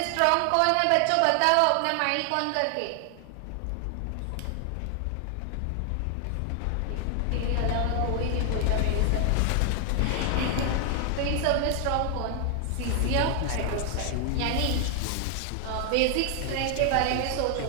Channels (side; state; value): both; different; correlation 0.00